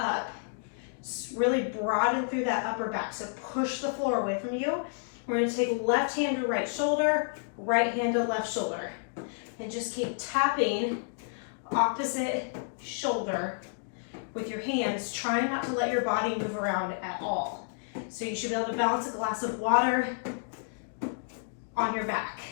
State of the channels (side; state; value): right; silent; digital silence